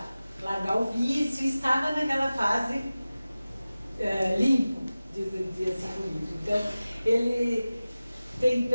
largar o vício, e estava naquela fase limpo, dizia assim o livro. Então, ele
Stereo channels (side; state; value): both; inverted; correlation -0.96